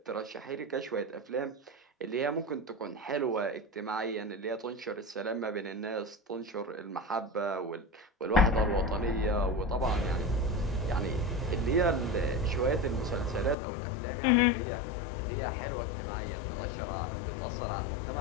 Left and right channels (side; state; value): right; drops out; at 13.6 s